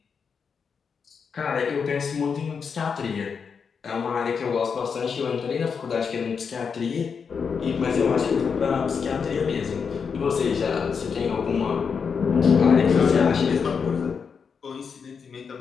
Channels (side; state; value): right; quieter; 6.1 dB